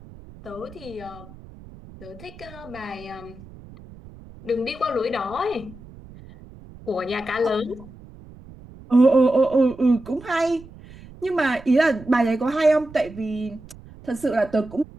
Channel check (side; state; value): right; noise; rumble, 19 dB below the sound